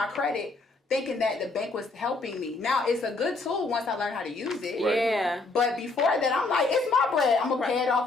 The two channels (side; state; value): right; quieter; 3.5 dB